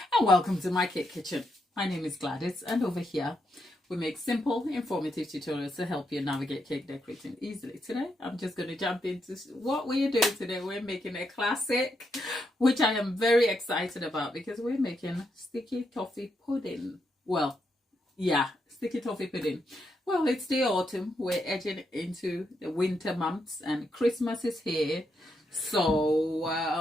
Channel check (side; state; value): both; normal; correlation 0.81